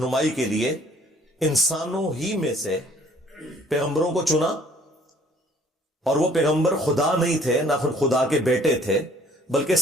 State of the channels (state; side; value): normal; both; correlation 0.57